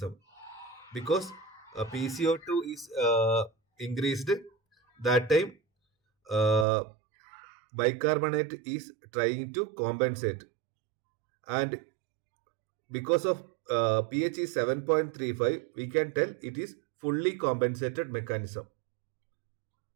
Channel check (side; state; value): left; drops out; at 6.7 s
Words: because PCO2 is increased. That time uh, bicarbonate is trying to compensate, and because of pH is 7.35, we can tell it is fully compensated mechanism.